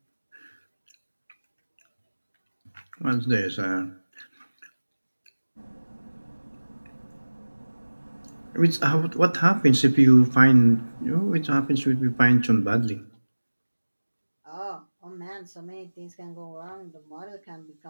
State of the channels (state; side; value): inverted; both; correlation -1.00